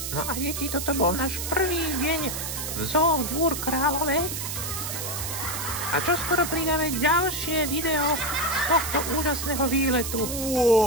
No a deti, toto bol náš prvý deň v zoo Dvůr Králové. A čoskoro pridáme ďalšie video z tohto úžasného výletu.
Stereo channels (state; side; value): noise; right; hiss, 5 dB below the sound